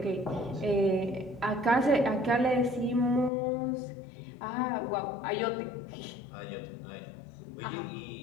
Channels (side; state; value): right; drops out; at 3.3 s